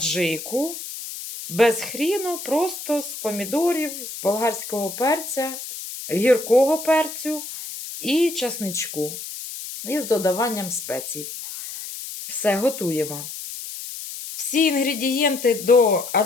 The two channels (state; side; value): noise; left; hiss, 9 dB below the sound